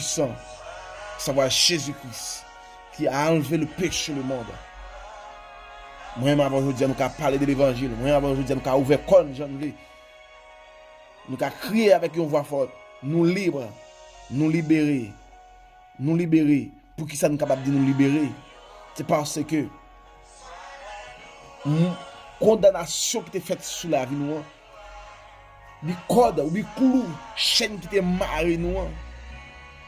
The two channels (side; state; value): both; identical; correlation 1.00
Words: savoir Jésus-Christ, qui a enlevé le péché le monde. Moi-même avant aujourd'hui, nous avons parlé de l'évangile. Moi-même avant aujourd'hui, nous avons ouvert comme Jean Louis. Nous avons crié avec une voix forte. Nous libres, nous libérer. Nous libérer. Pour qui ça nous capable de nous libérer? C'est parce que condamnation qui était faite sur la vie nous, les cordes, les clous, chaîne qui était marrée nous,